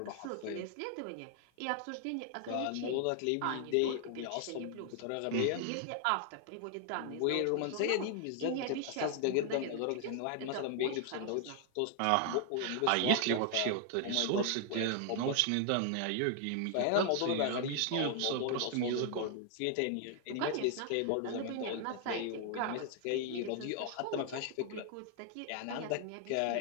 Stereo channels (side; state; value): both; different; correlation 0.00